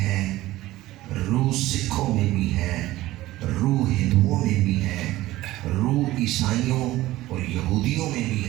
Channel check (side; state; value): left; quieter; 16.7 dB